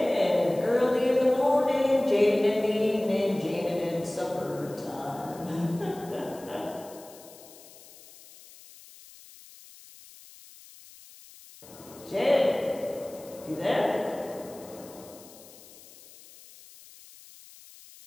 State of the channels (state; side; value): noise; left; hiss, 21 dB below the sound